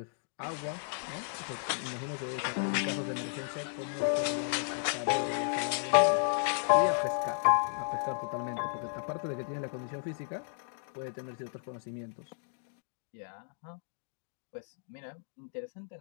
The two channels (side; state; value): right; silent; digital silence